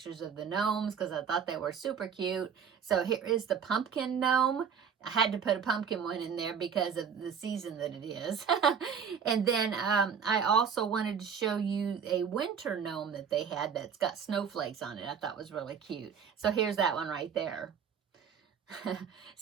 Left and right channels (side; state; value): left; quieter; 7.0 dB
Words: of the gnomes because I thought they were super cute. So here is the pumpkin gnome. I had to put a pumpkin one in there because of the season that it is. And then I also wanted to show you a winter gnome that they had that's got snowflakes on it. I thought was really cute. So here's that one right there.